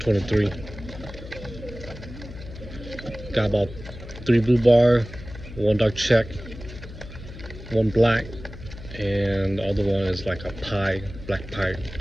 Got about 3 blue bar, 1 dark check, 1 black, and the other one is like a pie, black pie.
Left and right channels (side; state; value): left; noise; hum, 14 dB below the sound